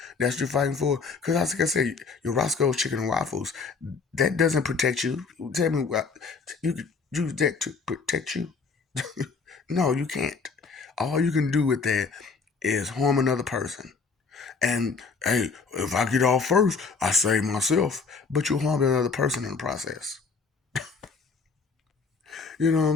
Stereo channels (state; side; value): quieter; right; 4.9 dB